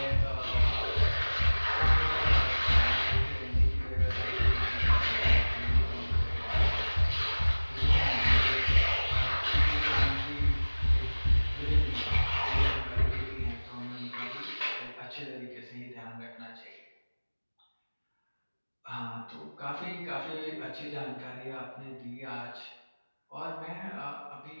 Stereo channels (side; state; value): both; inverted; correlation -1.00